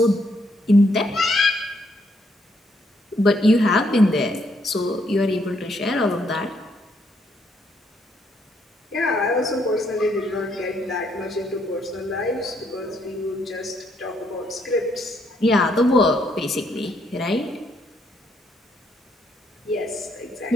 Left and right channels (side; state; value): both; normal; correlation 0.73